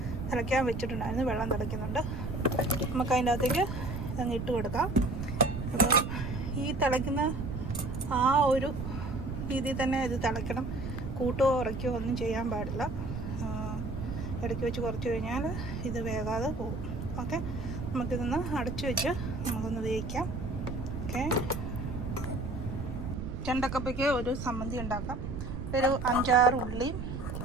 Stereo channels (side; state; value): right; noise; rumble, 5 dB below the sound